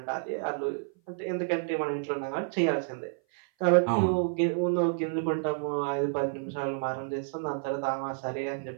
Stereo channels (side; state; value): left; silent; 56 dB below the other